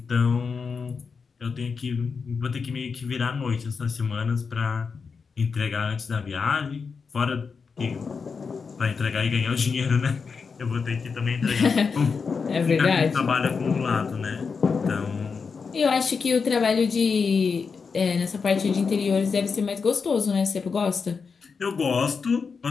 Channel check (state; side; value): quieter; right; 5.3 dB